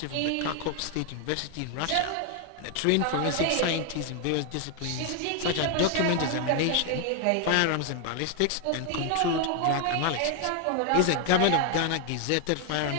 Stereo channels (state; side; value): different; both; correlation 0.01